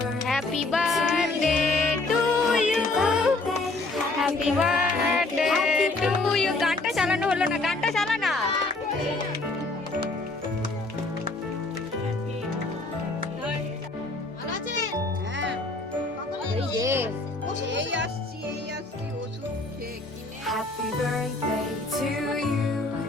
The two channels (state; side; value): quieter; right; 3.2 dB